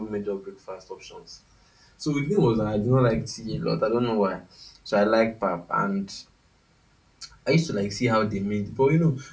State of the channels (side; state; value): both; identical; correlation 1.00